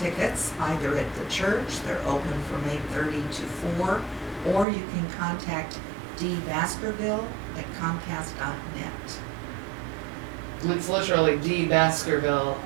either at the church, they're open from 8:30 to 4, or you can contact D. Baskerville at Comcast.net. It's literally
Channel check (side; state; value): left; drops out; at 4.7 s